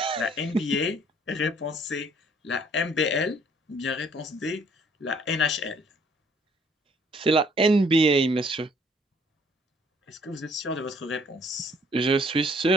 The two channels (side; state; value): both; normal; correlation 0.61